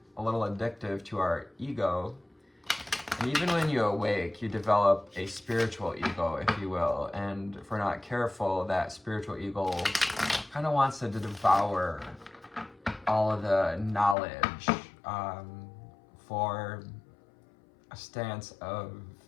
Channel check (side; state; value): right; drops out; at 14.2 s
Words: a little addictive to our ego. And even when you awake, you develop a spiritual ego, if you will. And if we're not careful, that spiritual ego kind of wants to devour all of the knowledge for a stance of